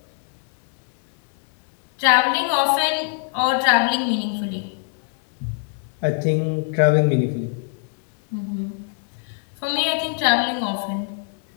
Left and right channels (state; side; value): silent; right; 58 dB below the other